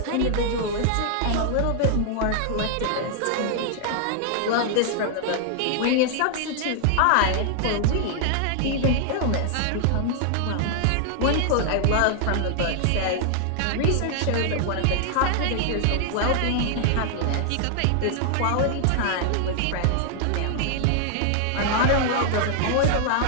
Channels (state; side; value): different; both; correlation 0.00